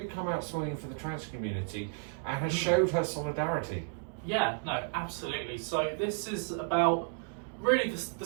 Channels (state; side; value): silent; left; 56 dB below the other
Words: come out swinging for the trans community and has showed her solidarity. Yeah, no, absolutely. So this is about, really the